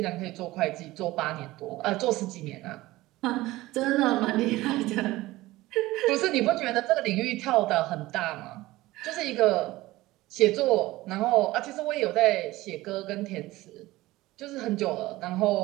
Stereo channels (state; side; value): quieter; left; 18.2 dB